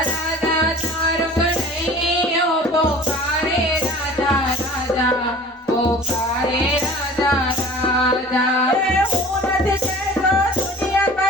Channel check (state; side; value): normal; both; correlation 0.45